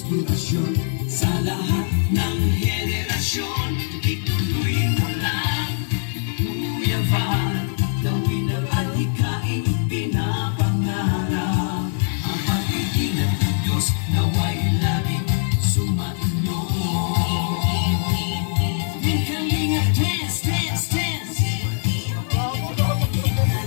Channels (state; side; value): silent; right; digital silence